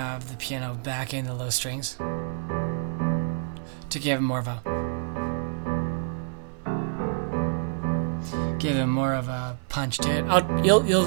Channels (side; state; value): left; silent; 59 dB below the other